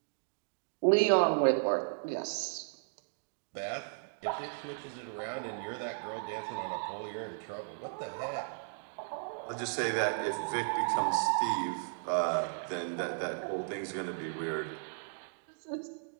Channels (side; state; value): left; silent; digital silence